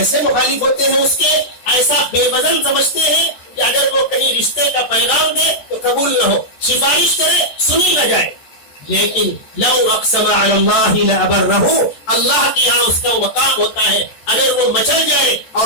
مخالف ہوتے ہیں اس کے, ایسا بے وزن سمجھتے ہیں کہ اگر وہ کہیں رشتے کا پیغام دے تو قبول نہ ہو, سفارش کرے سنی نہ جائے. لیکن لو اقسم علی اللہ لابرہ, اللہ کے یہاں اس کا مقام ہوتا ہے, اگر وہ مچل جائے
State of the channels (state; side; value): late; right; 14 ms